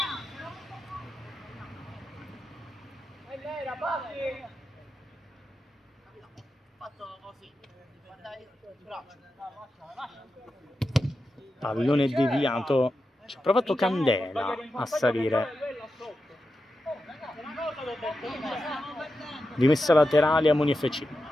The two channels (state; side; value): normal; both; correlation 0.90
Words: Pallone deviato, ci ha provato Candela a salire. Rimessa laterale a Moni FC.